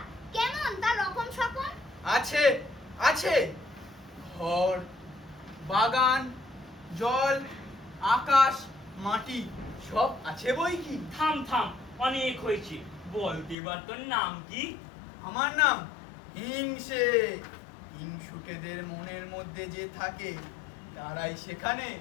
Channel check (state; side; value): drops out; right; at 13.6 s